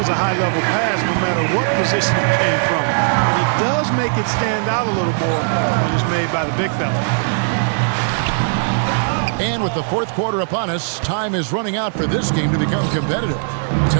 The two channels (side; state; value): left; silent; digital silence